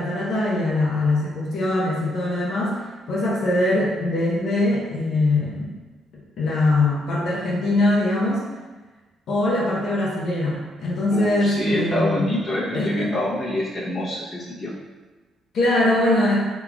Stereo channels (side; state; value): both; normal; correlation 0.73